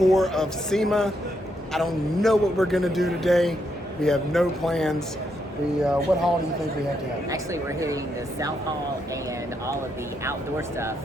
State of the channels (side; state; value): both; normal; correlation 0.78